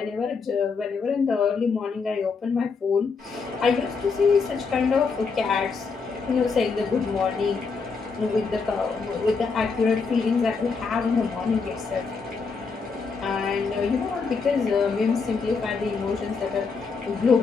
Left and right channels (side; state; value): right; quieter; 4.9 dB